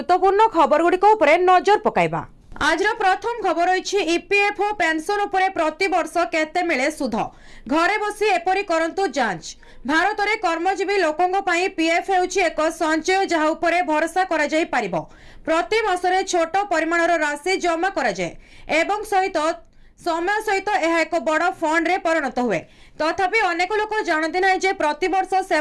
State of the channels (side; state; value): both; identical; correlation 1.00